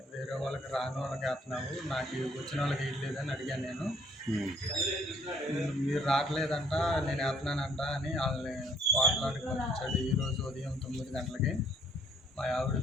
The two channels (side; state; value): both; normal; correlation 0.63